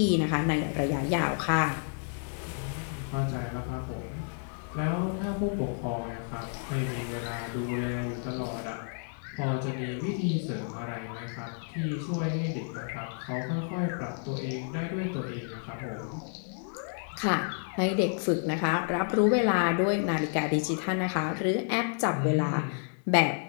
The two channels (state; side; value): silent; right; 58 dB below the other